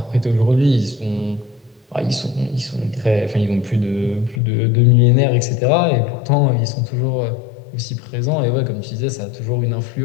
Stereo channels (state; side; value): drops out; right; at 4.4 s